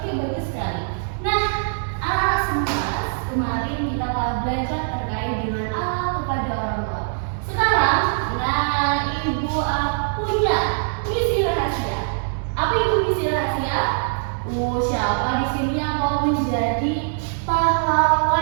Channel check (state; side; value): silent; left; 64 dB below the other